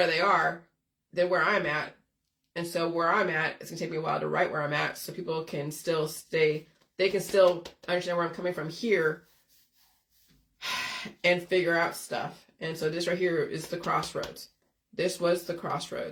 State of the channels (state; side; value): identical; both; correlation 1.00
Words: they are than where I'm at. And so where I'm at, it's gonna take me a while to write where I'm at, so people can still they can still understand where I'm coming from here and figure out stuff. And so this right here is the crossroads. This was the